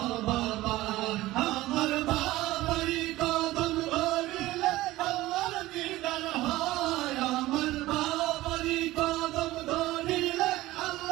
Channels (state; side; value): quieter; left; 17.3 dB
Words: বাবা। আমার বাবারি কদম ধরিলে আল্লাহর দিদার হয়, আমার বাবারি কদম ধরিলে